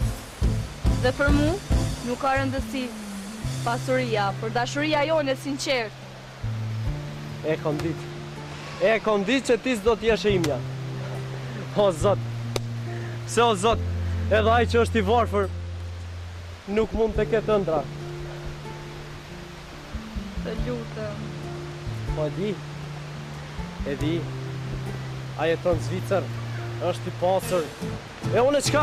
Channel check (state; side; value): identical; both; correlation 1.00